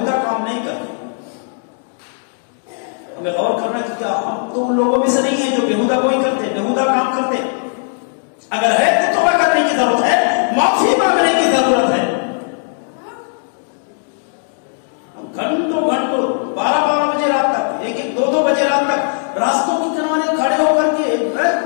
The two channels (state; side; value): silent; right; 68 dB below the other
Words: کام نہیں کرتے۔ ہمیں غور کرنا کہ کیا ہم تو ان لوگوں میں سے نہیں ہیں جو بیہودہ کوئی کرتے، بیہودہ کام کرتے؟ اگر ہے تو توبہ کرنے کی ضرورت ہے، معافی مانگنے کی ضرورت ہے۔ ہم گھنٹوں 12 بجے رات تک، 1-2 بجے رات تک راستوں کے کنارے کھڑے ہو کر کے